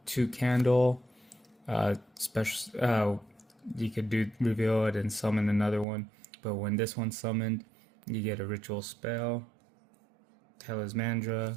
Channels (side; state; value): left; drops out; at 5.9 s